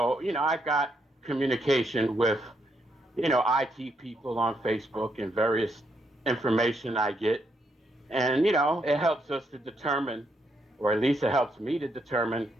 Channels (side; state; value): both; normal; correlation 0.77